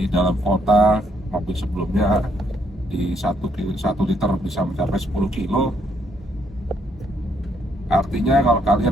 dalam kota mobil sebelumnya di 1 liter bisa mencapai 10 kilo. Artinya kalau kalian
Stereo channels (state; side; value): normal; both; correlation 0.72